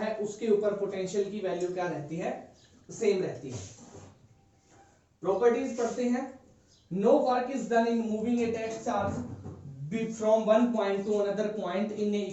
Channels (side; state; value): both; identical; correlation 1.00